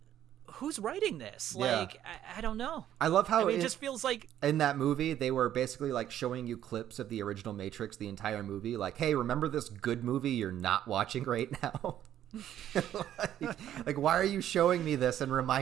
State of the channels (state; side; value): quieter; left; 11.3 dB